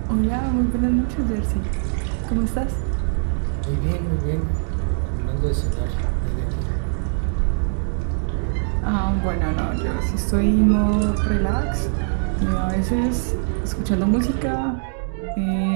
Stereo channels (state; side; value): silent; left; digital silence